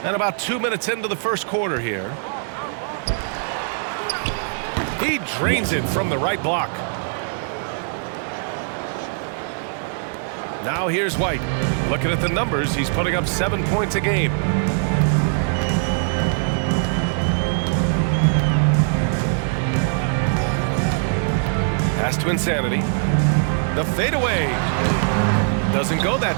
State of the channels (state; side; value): silent; left; digital silence